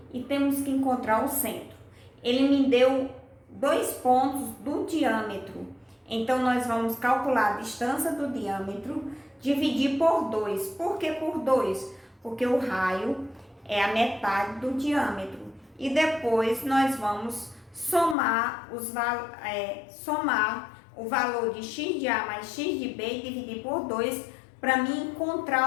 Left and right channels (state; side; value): drops out; right; at 18.2 s